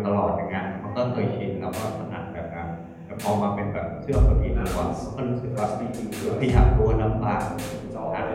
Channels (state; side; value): identical; both; correlation 1.00